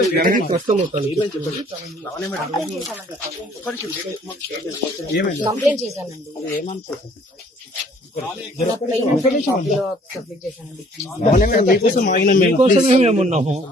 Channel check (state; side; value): normal; both; correlation 0.58